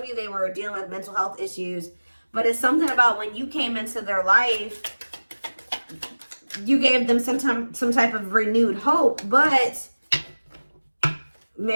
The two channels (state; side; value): inverted; both; correlation -1.00